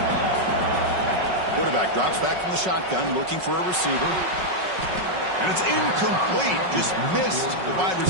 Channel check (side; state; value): left; late; 5.4 ms